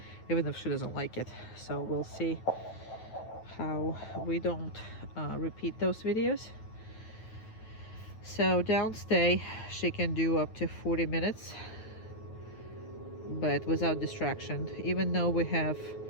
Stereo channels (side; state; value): right; late; 9.2 ms